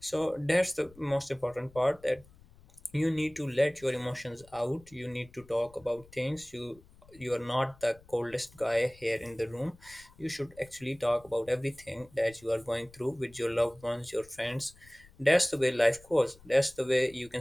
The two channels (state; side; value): noise; left; rumble, 25 dB below the sound